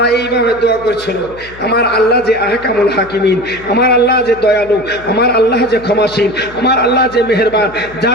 এইভাবে দোয়া করছিল, আমার আল্লাহ যে আহকামুল হাকিমিন, আমার আল্লাহ যে দয়ালু, আমার আল্লাহ যে ক্ষমাশীল, আমার আল্লাহ যে মেহেরবান,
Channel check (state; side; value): noise; left; hum, 20 dB below the sound